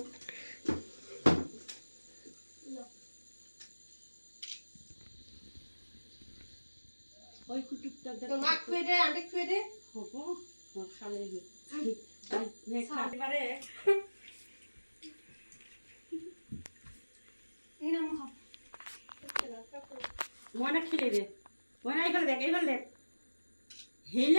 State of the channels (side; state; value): both; inverted; correlation -1.00